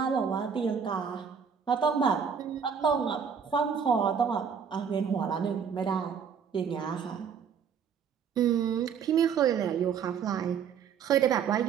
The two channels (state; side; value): quieter; left; 7.1 dB